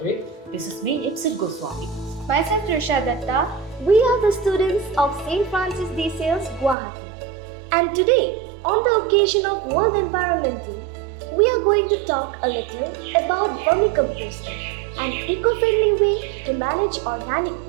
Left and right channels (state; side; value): drops out; left; at 6.8 s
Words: This is me, Ipsit Goswami. Myself, Trisha Datta. We are the students of St. Francis de Sales, Guwahati. And today, on the occasion of World Environment Day, we are going to talk a little about vermicomposting, an eco-friendly way to manage organic